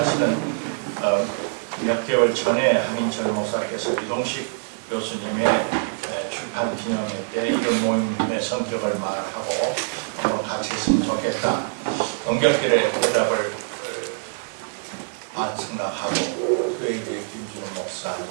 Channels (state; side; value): silent; left; digital silence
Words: 몇 개월 전에 한인철 목사께서 이동식 교수님의 출판 기념회 때 이런 모임의 성격을 말하고 같이 했으면 좋겠다. 연결길에 대답을 생각하고, 그에 이제 김준호 목사,